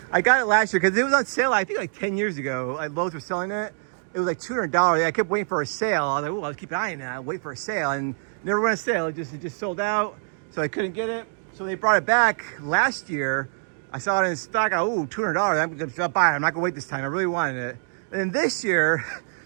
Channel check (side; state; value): left; silent; digital silence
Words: I got it last year because it was on sale, I think like 10 years ago. Lowe's were selling it. It was like $200. I kept waiting for a sale. I was like, oh, I'll keep eyeing that. Wait for a sale. And never went on sale. It just sold out. So I couldn't get it. So they brought it back last year. I saw it in stock. Oh, $200. I'm going to buy it. I'm not going to wait this time. I really wanted it. And then this year,